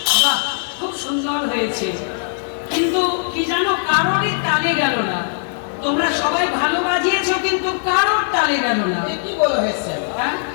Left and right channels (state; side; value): silent; right; digital silence